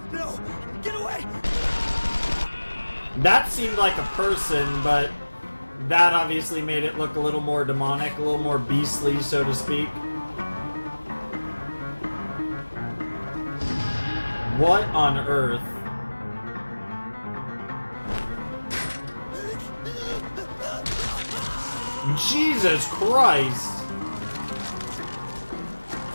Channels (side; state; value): both; inverted; correlation -1.00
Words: No! Get away! That seemed like a person, but that obviously made it look a little more demonic, a little more beastly, so to speak. What on earth? Jesus Christ!